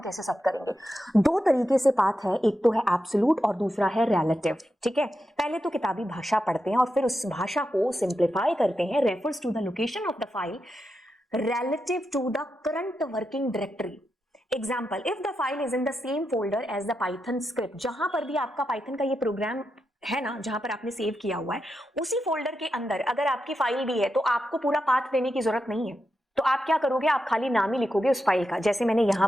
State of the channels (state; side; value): normal; both; correlation 0.87